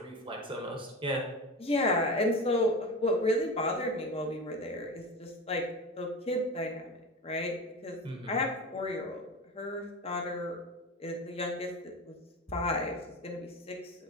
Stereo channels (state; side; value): normal; both; correlation 0.27